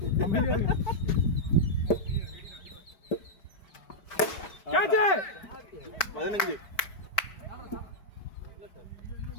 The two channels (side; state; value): right; late; 5.0 ms